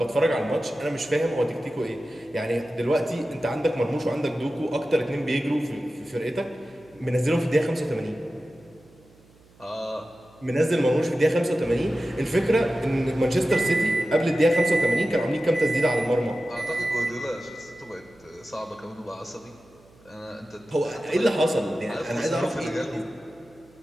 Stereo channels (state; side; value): noise; right; hum, 28 dB below the sound